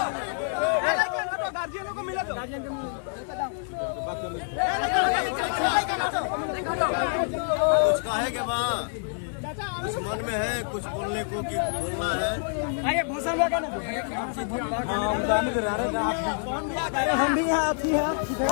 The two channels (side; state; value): right; silent; digital silence